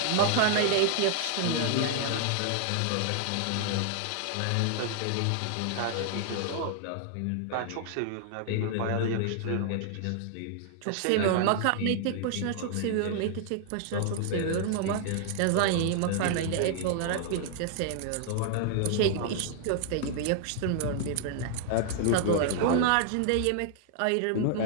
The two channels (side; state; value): both; different; correlation 0.00